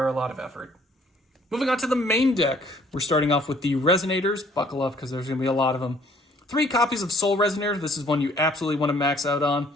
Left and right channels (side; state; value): both; normal; correlation 0.60